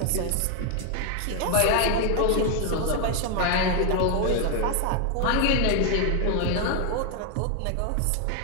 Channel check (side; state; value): both; different; correlation 0.00